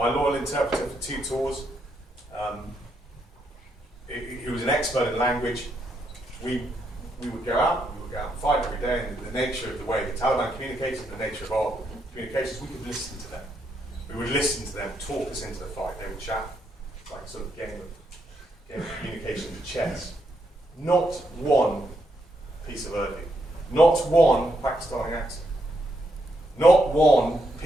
loyal interpreter for 2 tours, he was an expert in language. We would go out and fight every day, and the nature of the way the Taliban communicated, the nature of our communications, we could listen to them. We would listen to them talk us into the fight. They would chat, like a sort of game of communication with chess. Not one piece of Urdu, not one Pakistani accent, not one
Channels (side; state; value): both; normal; correlation 0.78